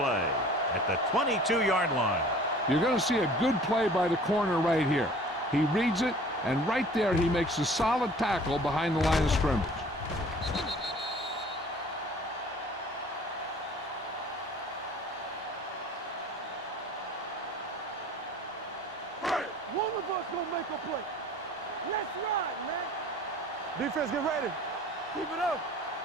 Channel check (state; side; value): normal; both; correlation 0.48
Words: at the 22-yard line. You're going to see a good play by the corner right here. He reads it, and right there he makes a solid tackle behind the line of scrimmage. One of us gonna make a play. Let's ride, man. Defense, get ready. Keep it up.